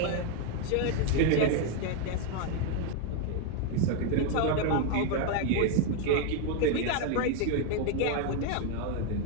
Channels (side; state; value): both; different; correlation 0.01